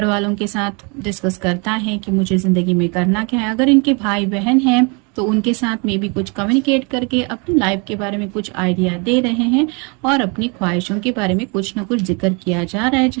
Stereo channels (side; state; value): left; quieter; 32.3 dB